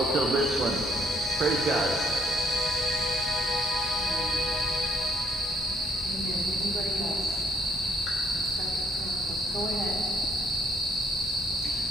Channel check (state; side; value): normal; both; correlation 0.67